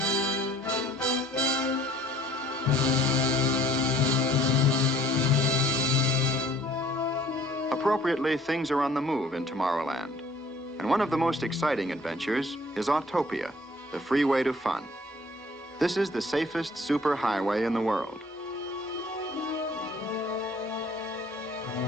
Appropriately, things are on the move in Tomorrowland. And one of the most exciting adventures is Autopia, the freeway to fun. This is the safest superhighway in the world.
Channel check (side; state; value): both; normal; correlation 0.55